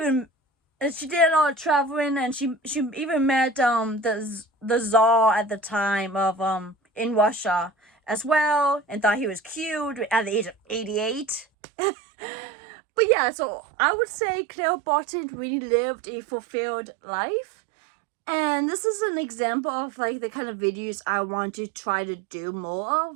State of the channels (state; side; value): drops out; left; at 11.5 s